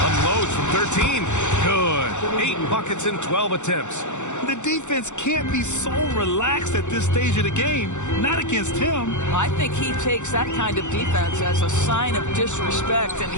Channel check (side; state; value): right; late; 0.84 ms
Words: Unloads from 13. Good. 8 buckets in 12 attempts. The defense can't be so relaxed at this stage of the game. Not against him. I think he takes that kind of defense as a sign of disrespect, and